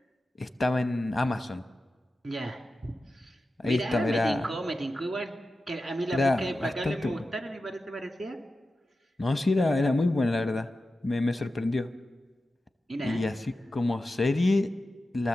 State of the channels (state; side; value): normal; both; correlation 0.93